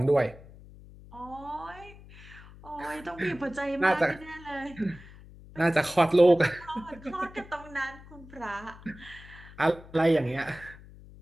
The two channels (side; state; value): left; noise; hum, 19 dB below the sound